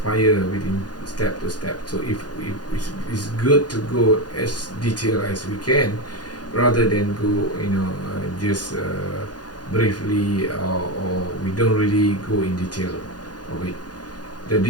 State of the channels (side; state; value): right; late; 0.69 ms